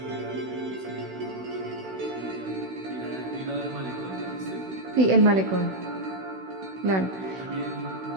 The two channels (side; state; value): left; late; 16 ms